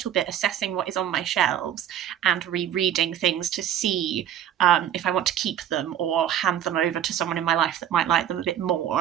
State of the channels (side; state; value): left; quieter; 10.4 dB